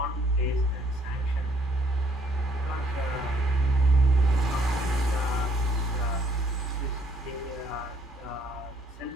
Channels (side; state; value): both; normal; correlation 0.66